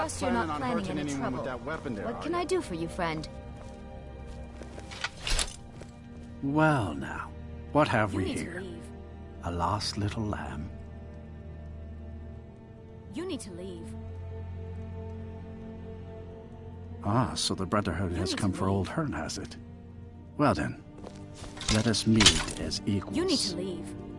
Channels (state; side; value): identical; both; correlation 1.00